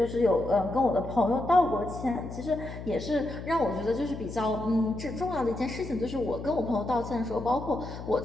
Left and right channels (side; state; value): left; noise; hum, 10 dB below the sound